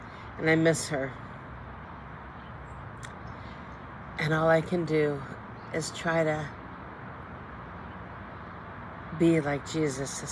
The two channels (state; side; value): identical; both; correlation 1.00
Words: And I miss her. And all I can do is try to be like Jesus to